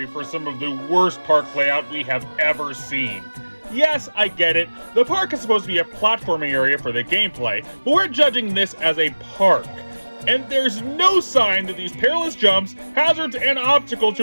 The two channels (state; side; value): inverted; both; correlation -1.00